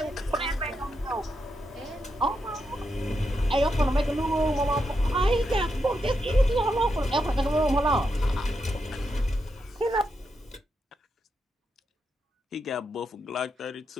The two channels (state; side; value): normal; both; correlation 0.84